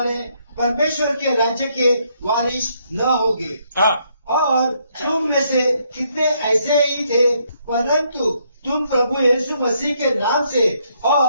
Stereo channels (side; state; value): both; inverted; correlation -0.73